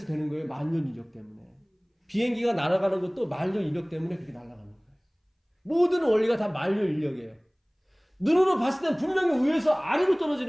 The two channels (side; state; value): both; identical; correlation 1.00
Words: 되는 거예요. 만년 이력 때문에. 비행기가 날아가는 것도 만년 이력 때문에 그렇게 날아가는 거예요. 모든 원리가 다 만년 인력이에요. 눈으로 봤을 땐 분명히 위에서 아래로